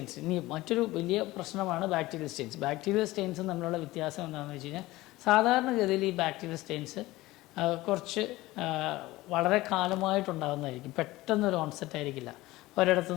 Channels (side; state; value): right; quieter; 18.6 dB